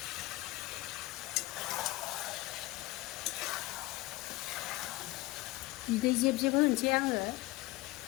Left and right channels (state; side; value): quieter; right; 19.7 dB